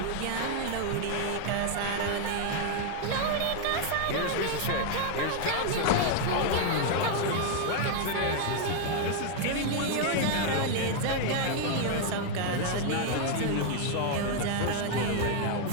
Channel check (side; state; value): both; different; correlation 0.00